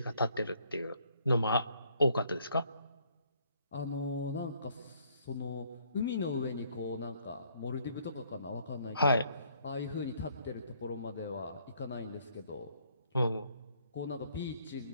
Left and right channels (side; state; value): both; inverted; correlation -0.66